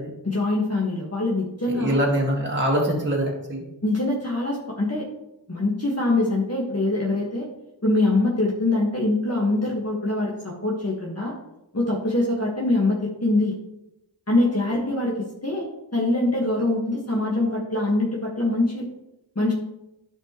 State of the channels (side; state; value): both; normal; correlation 0.55